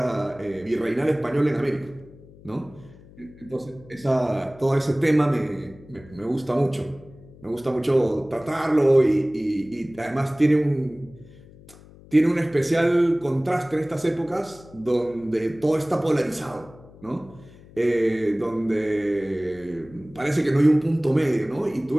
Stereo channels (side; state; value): left; noise; hum, 22 dB below the sound